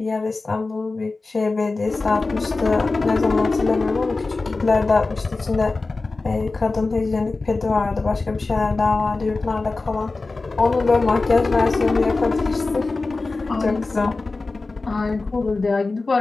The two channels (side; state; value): right; quieter; 3.6 dB